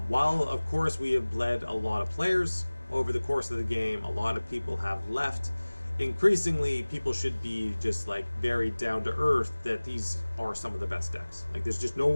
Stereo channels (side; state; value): both; inverted; correlation -1.00